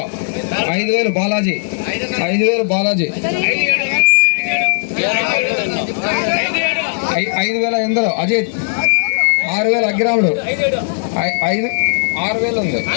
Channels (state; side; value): silent; right; digital silence